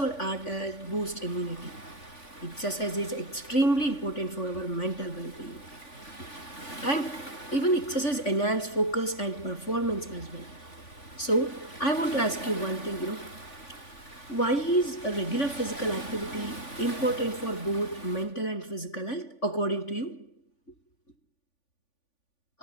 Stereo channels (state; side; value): late; right; 3.5 ms